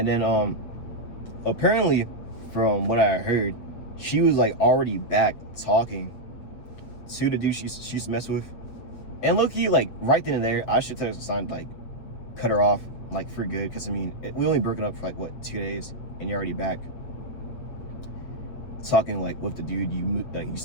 then, apparently, from what I heard, she was, like, already back talking to the dude she used to mess with. And low-key, like, right then and there, I should tell her some sign, like, cut her off, like, for good, because I mean, we only broken up for like what, 2 days, and you're already back talking like with the dude you used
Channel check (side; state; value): right; late; 8.2 ms